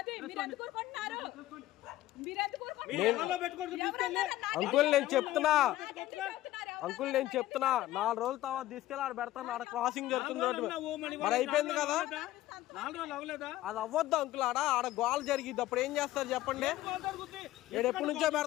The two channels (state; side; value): quieter; right; 15.2 dB